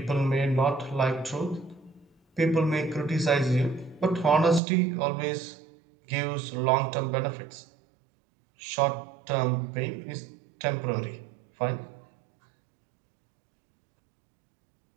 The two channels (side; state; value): left; drops out; at 4.6 s